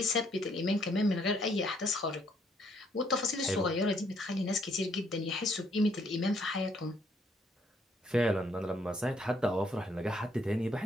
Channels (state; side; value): normal; both; correlation 0.69